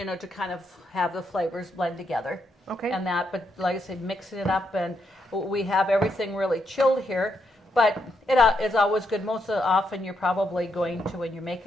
know, to kind of have the flavors blend together. Okay. And that, but like I said, mixing it up, and we have everything really chilled here. But it's always good. Most often you're probably going to, when you're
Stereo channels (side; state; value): both; normal; correlation 0.79